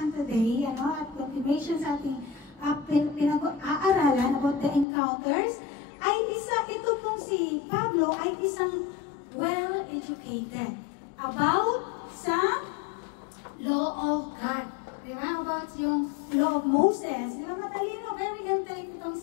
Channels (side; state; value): right; drops out; at 4.9 s